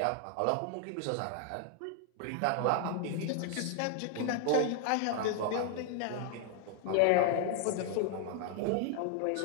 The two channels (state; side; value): different; both; correlation 0.00